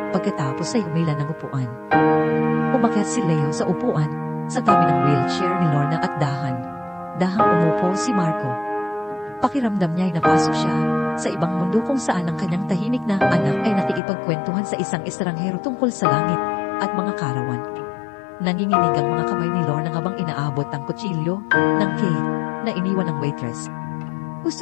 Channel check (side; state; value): right; drops out; at 14.0 s